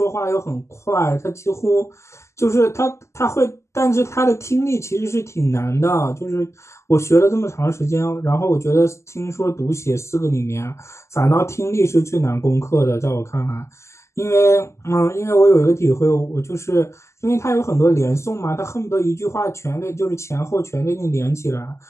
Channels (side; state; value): right; late; 0.13 ms